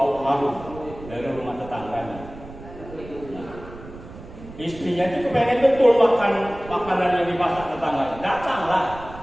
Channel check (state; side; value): noise; right; rumble, 16 dB below the sound